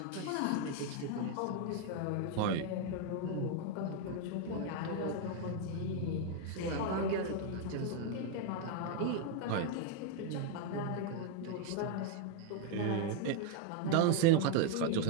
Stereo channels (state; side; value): different; both; correlation 0.01